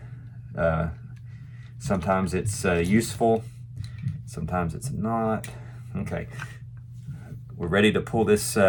Sometimes it's useful. Sometimes it's not. Okay, we're ready to pull this.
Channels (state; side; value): identical; both; correlation 1.00